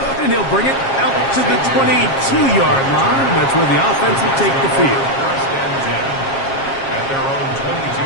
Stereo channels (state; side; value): late; right; 7.4 ms